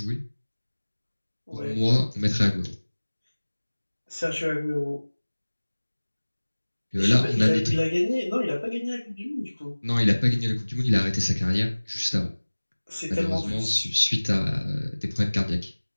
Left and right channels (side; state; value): both; inverted; correlation -1.00